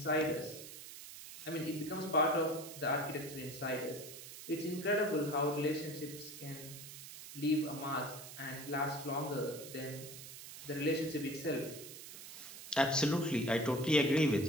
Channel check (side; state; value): right; noise; hiss, 12 dB below the sound